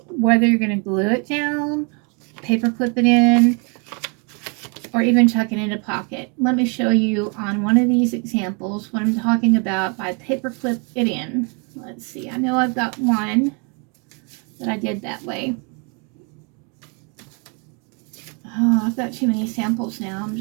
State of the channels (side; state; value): left; quieter; 35.5 dB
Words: whether you're going to glue it down, paper clip it in, or even tuck it in a pocket. Let me show you on one of these examples what I'm talking about by paper clip it in. Let's see, I know I've got one that I did that way. Oh, I've got too many samples now. I'm